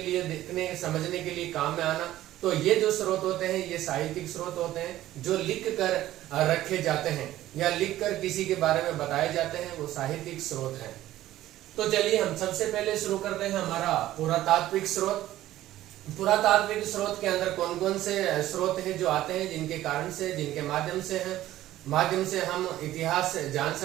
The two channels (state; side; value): quieter; left; 14.3 dB